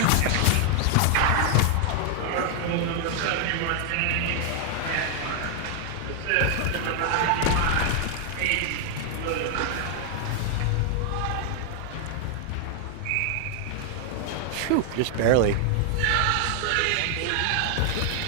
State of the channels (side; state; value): both; different; correlation 0.00